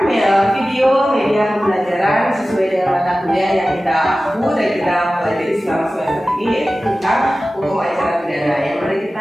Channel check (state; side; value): normal; both; correlation 0.96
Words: video media pembelajaran sesuai dengan mata kuliah yang kita aku dan kita pelajari selama semester ini, yaitu tentang hukum acara pidana. Yang mari